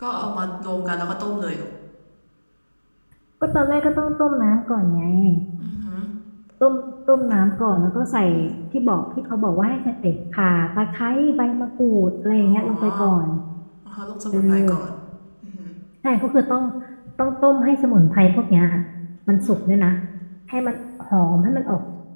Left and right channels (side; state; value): both; inverted; correlation -1.00